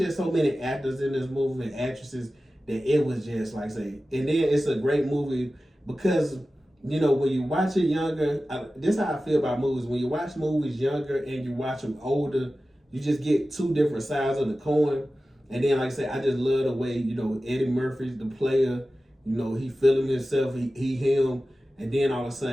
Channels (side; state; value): both; normal; correlation 0.95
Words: so many actors in this movie and actresses that it was just, like I say, and then it's a great movie because, when you watch it younger, this is how I feel about movies. When you watch movies younger and you watch them older, you just get two different sides of the coin. And then, like I said, I just love the way, Eddie Murphy's the player, he feeling himself, he him, and then all of a